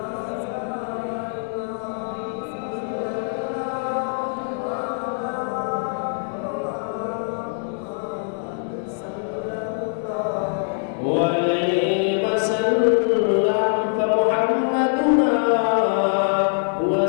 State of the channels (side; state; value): right; silent; 56 dB below the other